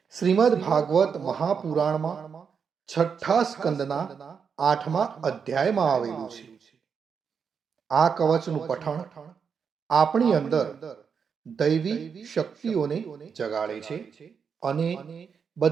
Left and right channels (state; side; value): quieter; left; 6.4 dB